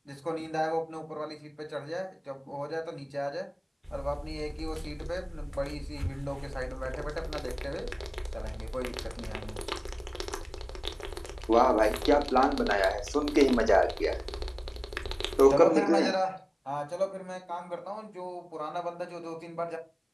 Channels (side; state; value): both; identical; correlation 1.00